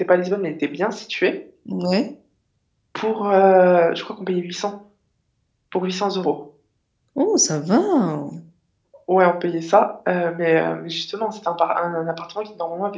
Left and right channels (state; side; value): identical; both; correlation 1.00